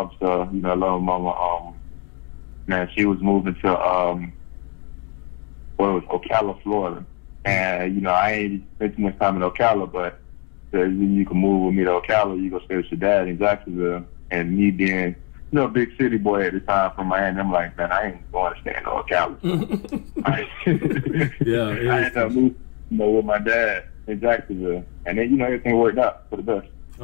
You know, I love my mama. Man, she was moving to Ocala, Florida, and you know, I ain't spent too much time in Ocala, but you can move with me to Ocala. You go stay with your dad in Jacksonville, and me being, you know, a big city boy at the time from Miami, I'm like, man, I ain't going to stay in Ocala. Yeah, I ended up moving, you know, with my dad in Jacksonville, and then, you know, everything worked out for the best.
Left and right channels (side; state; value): right; quieter; 32.9 dB